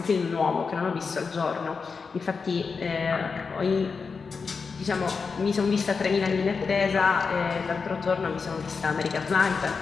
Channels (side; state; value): right; quieter; 5.1 dB